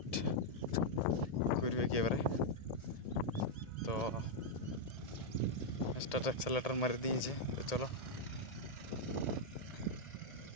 করবে কি এবারে। তো স্টার্ট অ্যাক্সেলেটর মারি দিয়েছে। তো চলো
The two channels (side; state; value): right; late; 1.8 ms